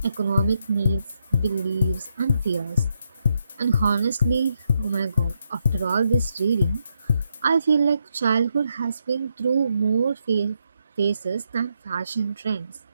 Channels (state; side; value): inverted; both; correlation -0.80